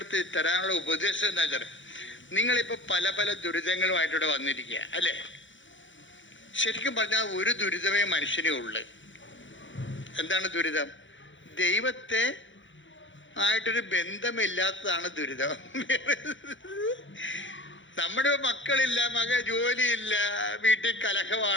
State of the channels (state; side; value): late; right; 0.55 ms